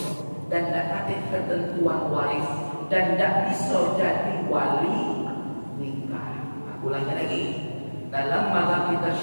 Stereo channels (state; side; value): inverted; both; correlation -1.00